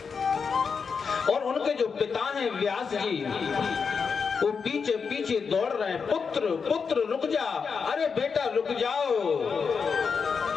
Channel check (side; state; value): right; quieter; 5.7 dB